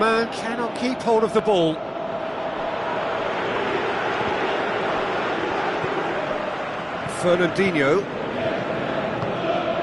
cannot keep hold of the ball. Fernandinho.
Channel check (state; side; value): identical; both; correlation 1.00